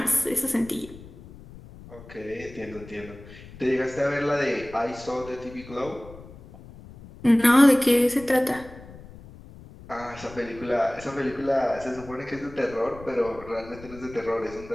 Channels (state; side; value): noise; left; rumble, 18 dB below the sound